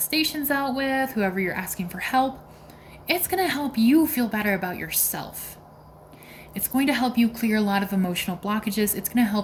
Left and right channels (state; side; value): identical; both; correlation 1.00